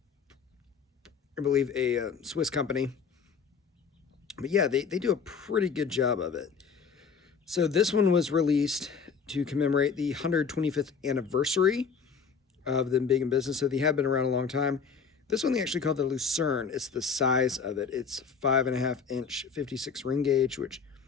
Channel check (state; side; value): quieter; right; 5.9 dB